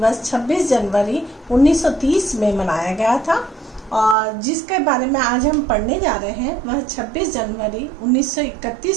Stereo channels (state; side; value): drops out; left; at 4.2 s